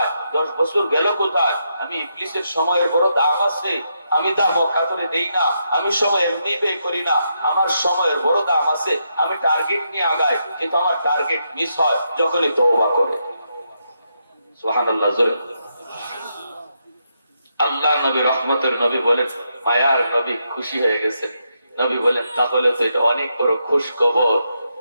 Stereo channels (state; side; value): inverted; both; correlation -0.81